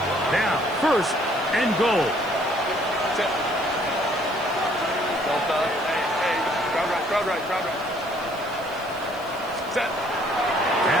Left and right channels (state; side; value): noise; right; hiss, 23 dB below the sound